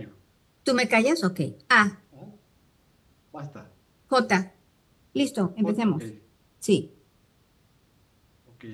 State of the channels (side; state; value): both; identical; correlation 1.00